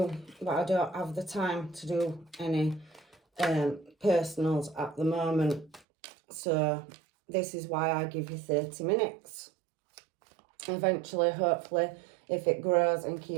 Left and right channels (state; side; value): drops out; left; at 5.8 s